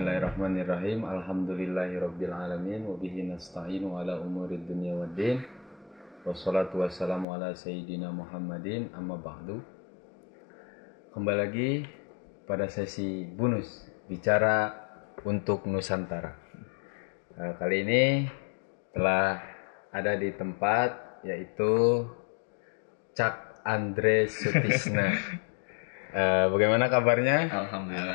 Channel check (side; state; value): right; drops out; at 7.2 s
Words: Alhamdulillahirabbil alamin wa bihi nasta'inu ala umurid dunya waddin. Wassalatu wassalamu ala sayyidina Muhammadin amma ba'du. Kembali lagi pada sesi bonus bicara untuk Nusantara. Kali ini telah ada di tempat yaitu Cak Andre Sutisna. Bagaimana kabarnya?